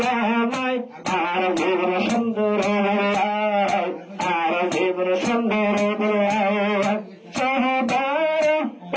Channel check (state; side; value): identical; both; correlation 1.00